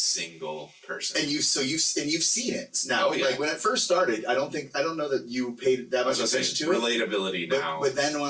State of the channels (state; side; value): identical; both; correlation 1.00